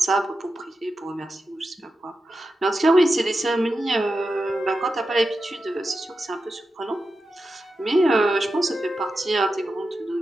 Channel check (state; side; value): normal; both; correlation 0.90